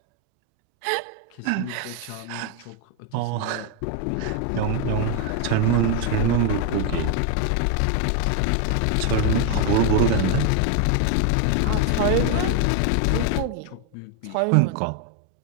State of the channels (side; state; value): both; different; correlation 0.01